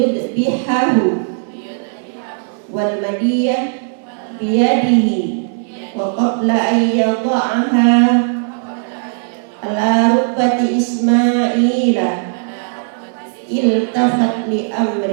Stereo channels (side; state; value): left; silent; 69 dB below the other